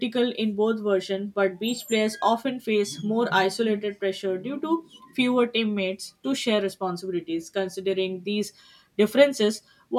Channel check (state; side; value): identical; both; correlation 1.00